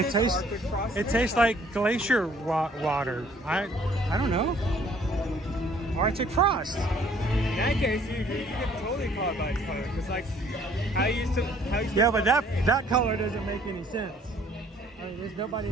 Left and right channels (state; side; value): normal; both; correlation 0.59